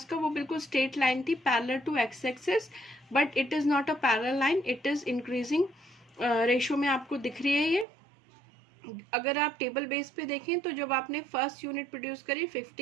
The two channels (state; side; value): drops out; left; at 7.9 s